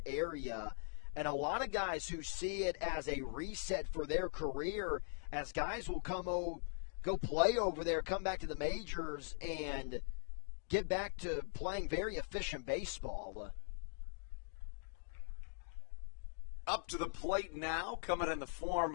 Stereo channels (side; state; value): right; silent; digital silence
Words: area. And a lot of guys who see it as a reset for their career, as guys will go play over there, come back to the majors, and get back to playing very efficient baseball. Up to the plate now, coming in the